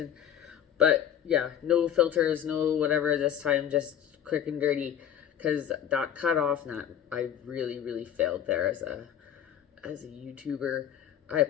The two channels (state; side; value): quieter; right; 9.8 dB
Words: But yeah, no filters, no whatever this time, just quick and dirty. Because that cut off, and that I really failed there as a YouTuber. I